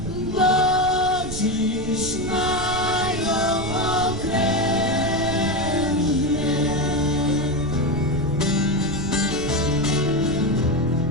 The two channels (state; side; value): noise; right; rumble, 9 dB below the sound